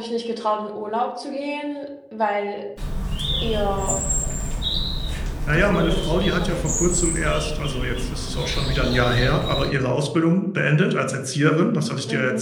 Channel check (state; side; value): identical; both; correlation 1.00